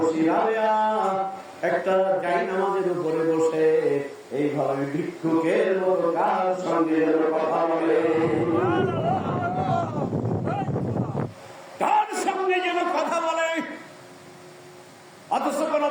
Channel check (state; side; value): identical; both; correlation 1.00